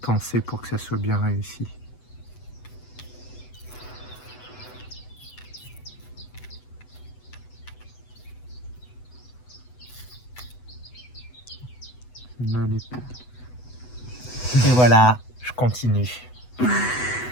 penser pour que ça soit bien réussi. Et voilà, je continue.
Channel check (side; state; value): right; late; 8.0 ms